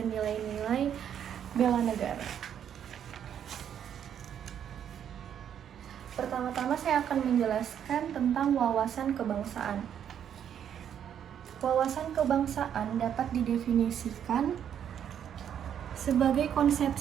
nilai-nilai bela negara. Pertama-tama saya akan menjelaskan tentang wawasan kebangsaan. Wawasan kebangsaan dapat didefinisikan sebagai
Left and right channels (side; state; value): left; quieter; 9.1 dB